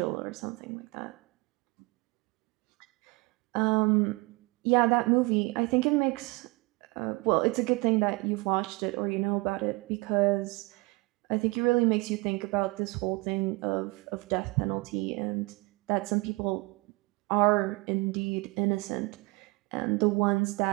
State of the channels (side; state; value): left; quieter; 25.5 dB